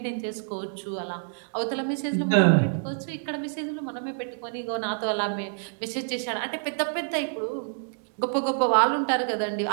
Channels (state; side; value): silent; left; digital silence